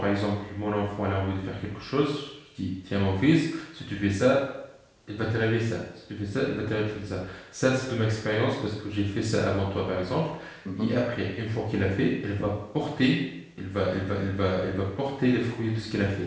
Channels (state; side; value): identical; both; correlation 1.00